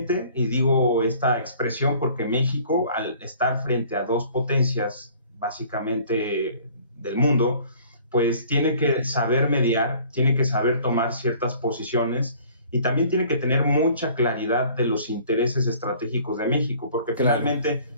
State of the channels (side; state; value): both; inverted; correlation -0.53